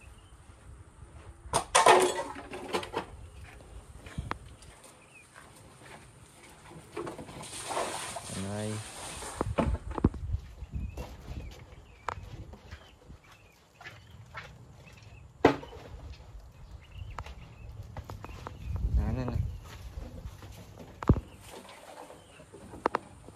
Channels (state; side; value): identical; both; correlation 1.00